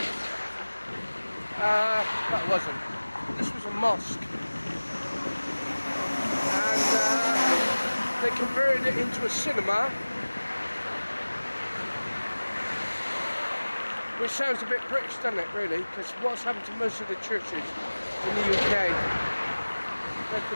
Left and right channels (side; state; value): both; inverted; correlation -1.00